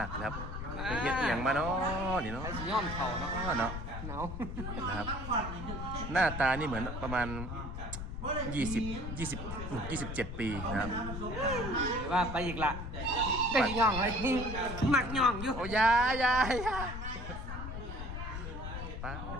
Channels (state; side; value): noise; left; rumble, 6 dB below the sound